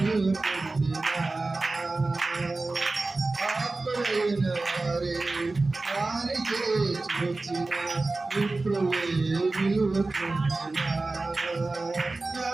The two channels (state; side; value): quieter; left; 3.3 dB